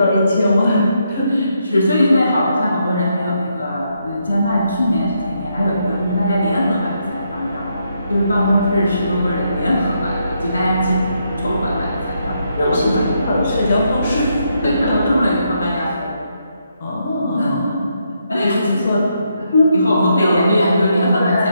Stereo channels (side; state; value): both; inverted; correlation -0.78